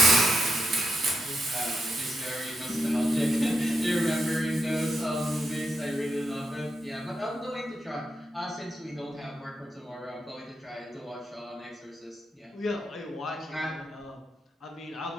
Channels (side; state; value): both; normal; correlation 0.84